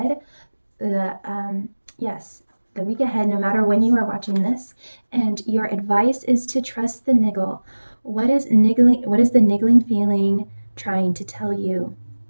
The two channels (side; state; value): both; inverted; correlation -1.00